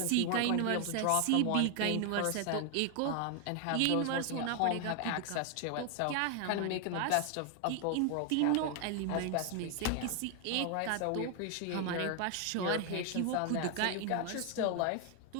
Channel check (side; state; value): both; different; correlation 0.00